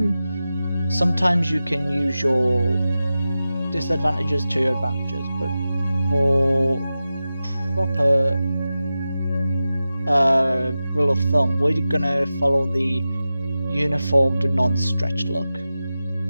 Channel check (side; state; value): both; inverted; correlation -0.94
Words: you can use your disadvantages to your advantages, but for proper rule of thumb, we're gonna follow the uniformed non-stretched look.